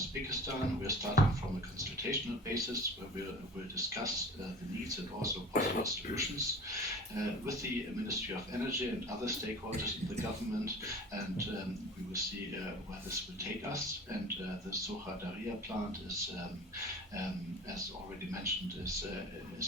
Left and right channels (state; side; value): normal; both; correlation 0.40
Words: We are starting from a consultational basis where we'll discuss the needs and also possible solutions with the Ministry of Energy and other stakeholders in the government, and we will see where this will take us. And the Soha Daria plant is, as already mentioned,